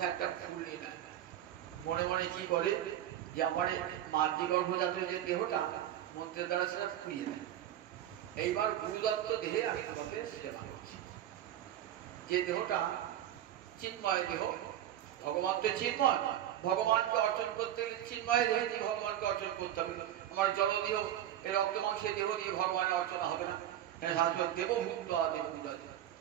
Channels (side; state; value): left; quieter; 11.8 dB